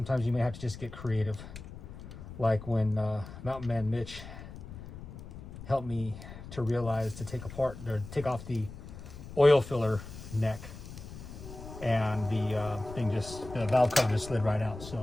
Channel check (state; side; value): noise; left; rumble, 13 dB below the sound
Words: you may have to just get creative, like when Mountain Man Mitch helped me to realize to take off the oil filler neck, and the valve cover just slid right out.